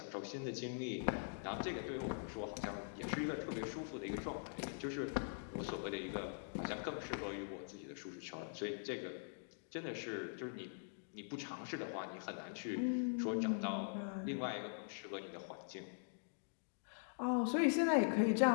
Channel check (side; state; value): right; silent; digital silence